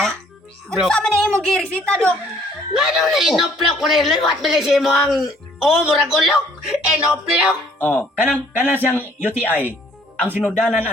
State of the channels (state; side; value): normal; both; correlation 0.60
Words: Dok. Unsa man na imong girisita dok? Nga daw na inoplok ko rin. Liwat bilisi mo ang... Oh, murag ulok. Inoplok. Oh, kanang siyang UTI ang sinudanan